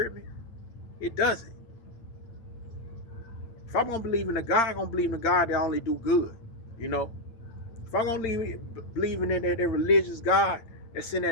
me? It doesn't. If I'm gonna believe in a God, I'm gonna believe in a God that only do good. You know, if I'm gonna believe in that religious God that's in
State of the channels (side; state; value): right; late; 8.9 ms